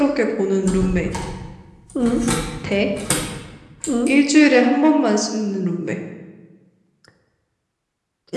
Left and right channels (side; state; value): both; identical; correlation 1.00